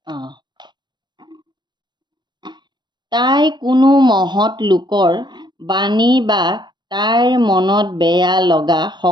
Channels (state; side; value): late; left; 0.21 ms